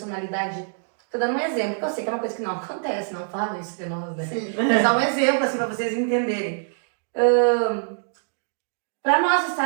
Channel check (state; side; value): silent; left; digital silence